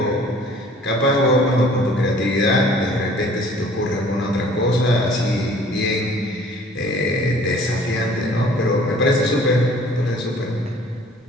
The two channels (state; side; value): normal; both; correlation 0.53